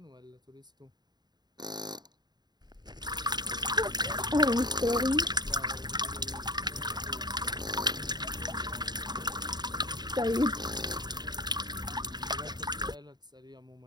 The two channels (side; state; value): left; late; 0.20 ms